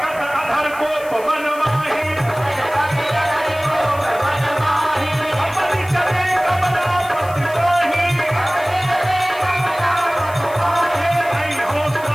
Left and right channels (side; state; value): left; noise; hiss, 20 dB below the sound